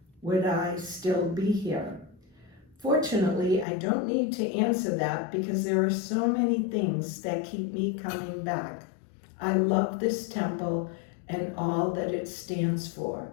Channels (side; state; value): right; drops out; at 3.7 s